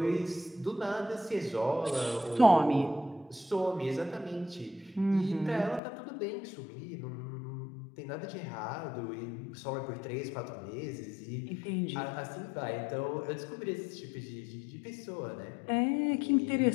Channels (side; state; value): right; drops out; at 5.8 s